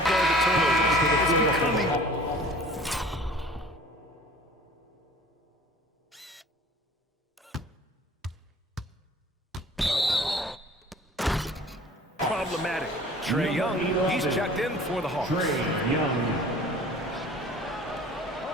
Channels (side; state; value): both; normal; correlation 0.46